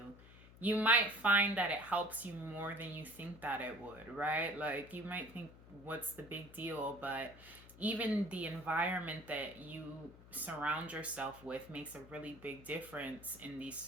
You might find that it helps you more than you think that it would, right? Like you might think, what's the big deal? But even the environment that you surround yourself with makes a really big difference in these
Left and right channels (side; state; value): left; noise; hum, 20 dB below the sound